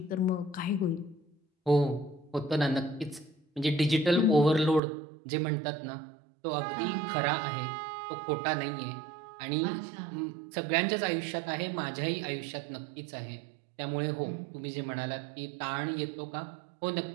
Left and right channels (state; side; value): drops out; left; at 4.8 s